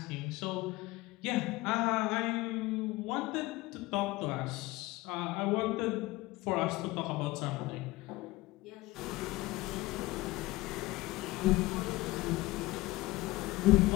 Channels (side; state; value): right; quieter; 19.9 dB